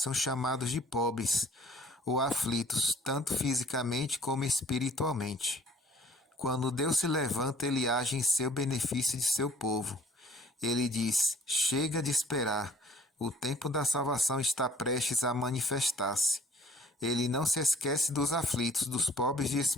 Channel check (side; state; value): both; normal; correlation 0.55